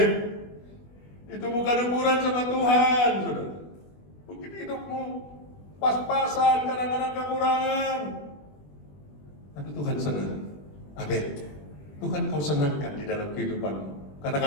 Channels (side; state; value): right; late; 20 ms